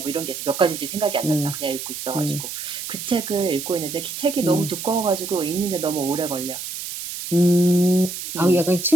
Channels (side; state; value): right; noise; hiss, 8 dB below the sound